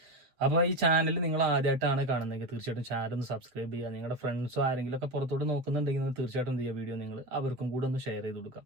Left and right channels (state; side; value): late; left; 8.0 ms